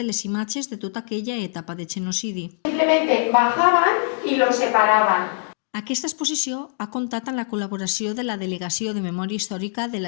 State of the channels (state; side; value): silent; right; digital silence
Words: les imatges de tota aquella etapa de genocidi. Simplemente bajaban y los separaban. Aquesta exposició ha comptat amb la col·laboració de la Delegació de Memòria Històrica de